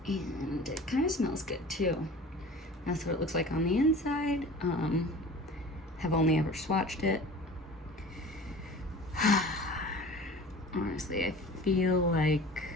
And it kind of smells good too. That's what it looks like on the inside. Have only ever swatched it. Honestly, I feel like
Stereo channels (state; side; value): normal; both; correlation 0.40